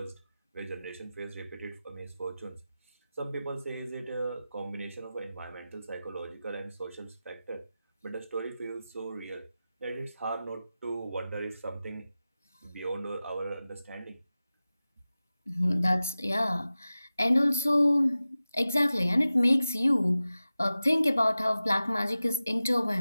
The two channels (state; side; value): inverted; both; correlation -0.95